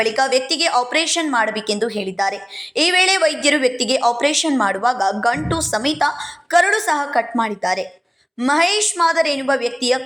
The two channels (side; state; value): both; identical; correlation 1.00